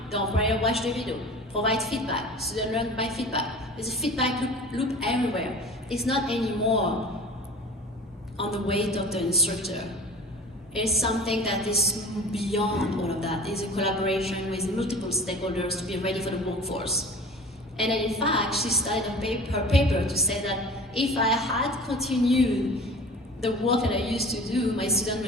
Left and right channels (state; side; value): normal; both; correlation 0.40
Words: the employer watch the video, provide feedback, student learn by feedback. There's a feedback loop everywhere. It's not anymore on the weight of the instructor. It's something that is beyond all of that. It's a collaboration with multiple stakeholders to be ready for the workforce. And in fact, she started her paper to say that if I had continued the work that I used to do, my student